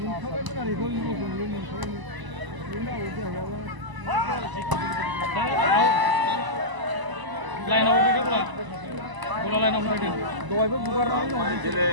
Line out dia pula. Bola line out dia. Dua itu bukan line out.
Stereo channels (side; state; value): left; late; 1.0 ms